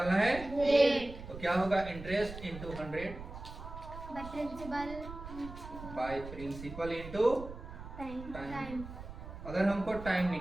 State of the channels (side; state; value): right; noise; rumble, 12 dB below the sound